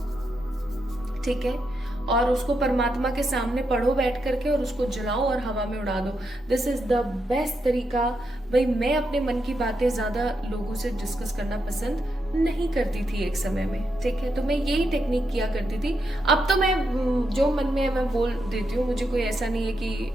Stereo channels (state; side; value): normal; both; correlation 0.83